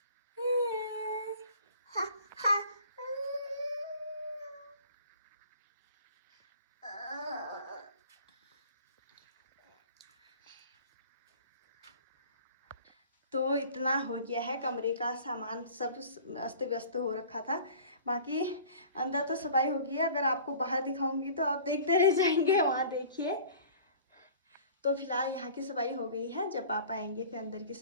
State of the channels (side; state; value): both; inverted; correlation -0.45